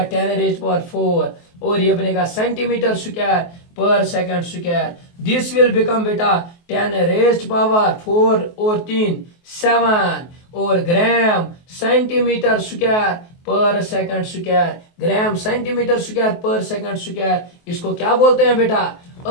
10 रेज पावर 4 और ये बनेगा centimetre square per second square. This will become बेटा 10 रेज पावर 4 और 3 7 और gram centimetre square per second square. Gram centimetre square per second square, इसको क्या बोलते हैं बेटा?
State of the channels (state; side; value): late; right; 23 ms